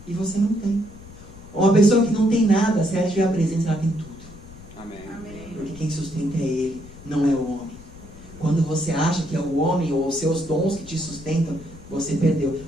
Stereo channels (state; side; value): noise; left; rumble, 19 dB below the sound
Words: E você não tem. Uma pessoa que não tem nada, se ela tiver a presença, ela tem tudo. Amém. Porque quem sustenta é Ele, não é o homem. Quando você acha que é o homem ou os seus dons que te sustentam, você perdeu.